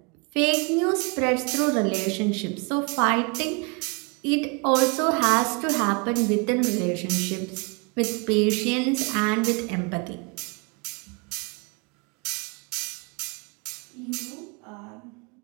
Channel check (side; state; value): left; quieter; 31.0 dB